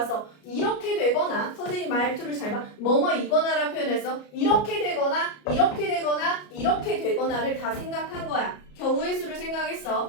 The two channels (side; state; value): right; late; 33 ms